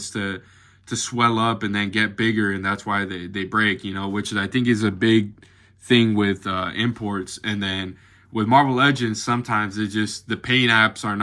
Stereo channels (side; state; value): both; identical; correlation 1.00